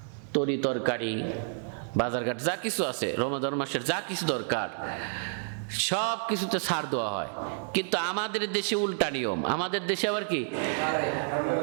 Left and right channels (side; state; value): left; silent; 58 dB below the other